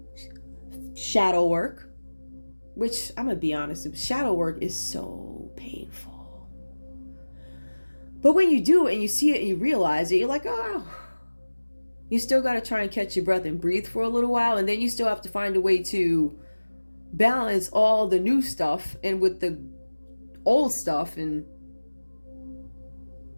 Shadow work. Which, I'm going to be honest, shadow work is so painful. But when you do it and you see it and you realize it, you're like, oh. You still got to try and catch your breath and breathe for a little while. And then you still have to find a way to balance all the new stuff and with the old stuff and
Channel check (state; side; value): inverted; both; correlation -1.00